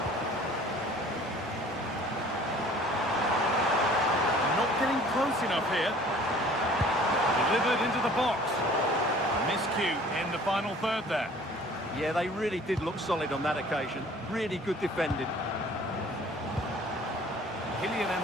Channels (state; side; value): normal; both; correlation 0.51